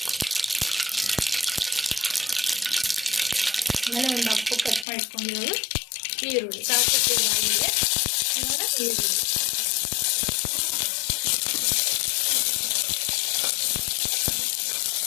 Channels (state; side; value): drops out; right; at 4.9 s